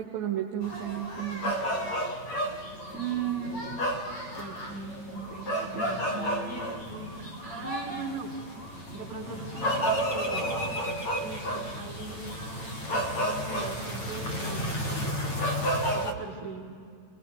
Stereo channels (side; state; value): right; late; 8.8 ms